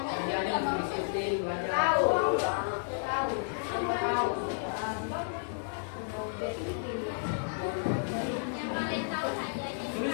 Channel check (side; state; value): right; silent; 56 dB below the other